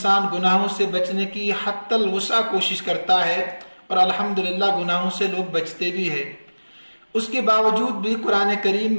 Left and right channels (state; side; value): inverted; both; correlation -1.00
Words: گناہوں سے بچنے کی حتی الوسع کوشش کرتا ہے اور الحمدللہ گناہوں سے لوگ بچتے بھی ہیں۔ اس کے باوجود بھی قرآن کریم